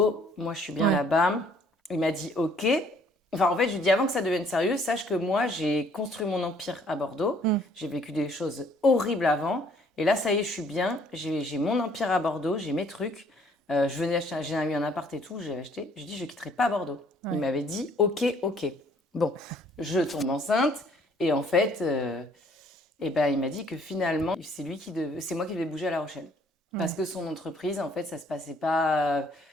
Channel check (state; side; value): normal; both; correlation 0.61